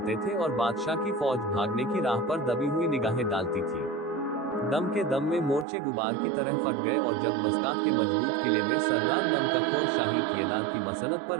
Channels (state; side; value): drops out; left; at 5.7 s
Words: थे और बादशाह की फौज भागने की राह पर दबी हुई निगाहें डालती थी। दम के दम में मोर्चे गुबार की तरह फट गए और जब मस्कात के मजबूत किले में सरदार नमकखोर शाही किलेदार की मसनत